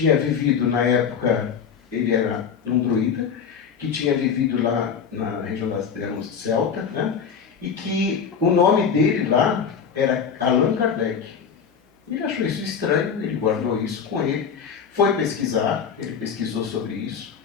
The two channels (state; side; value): quieter; right; 6.7 dB